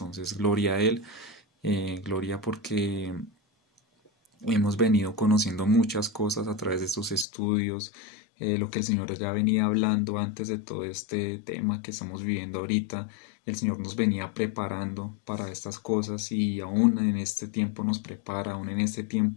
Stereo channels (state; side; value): drops out; right; at 7.2 s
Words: gloria a Él, gloria porque hemos venido conociendo muchas cosas a través de estos estudios, lo que el Señor ya venía hablando antes de todo este tema que estamos viviendo ahorita. El Señor nos venía preparando para estas cosas y aún en este tiempo nos prepara, aún en este